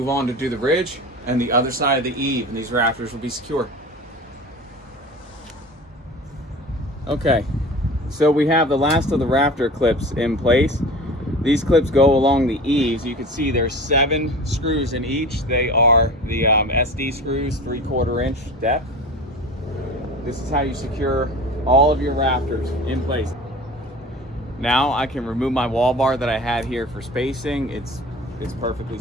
on to do the ridge and the other side of the eave, and these rafters will be secure. Okay, so we have the last of the rafter clips in place. These clips go along the eaves. You can see there's 7 screws in each. They are the SD screws, 3/4 inch depth. This is how you secure all of your rafters in place. Now I can remove my wall bar that I had here for spacing. It's perfectly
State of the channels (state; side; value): normal; both; correlation 0.36